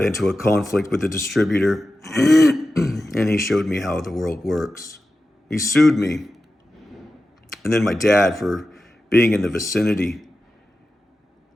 into a conflict with the distributor, and he showed me how the world works. He sued me, and then my dad for being in the vicinity.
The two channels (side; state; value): both; normal; correlation 0.93